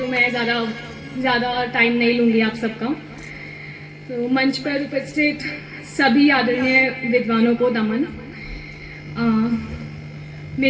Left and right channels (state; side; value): identical; both; correlation 1.00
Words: मैं ज़्यादा टाइम नहीं लूँगी आप सबका। तो मंच पर उपस्थित सभी आदरणीय विद्वानों को नमन।